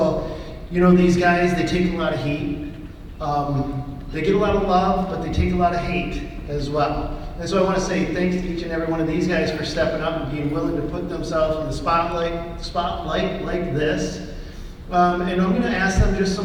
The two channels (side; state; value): both; identical; correlation 1.00